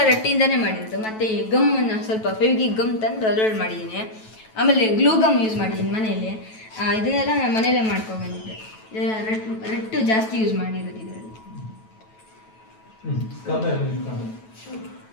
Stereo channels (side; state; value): right; late; 9.2 ms